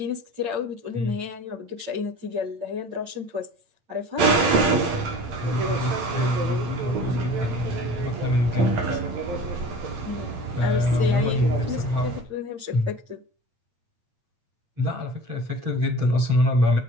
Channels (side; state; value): left; late; 8.7 ms